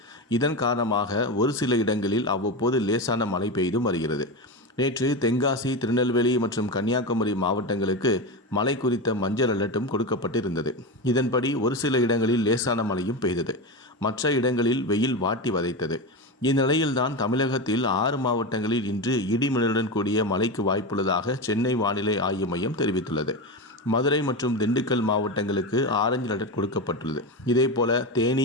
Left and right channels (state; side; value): normal; both; correlation 0.18